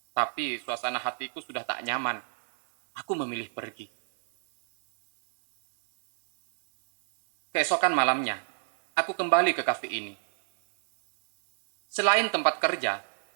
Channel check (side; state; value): left; silent; digital silence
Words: Tapi suasana hatiku sudah tak nyaman. Aku memilih pergi. Keesokan malamnya, aku kembali ke kafe ini. Selain tempat kerja,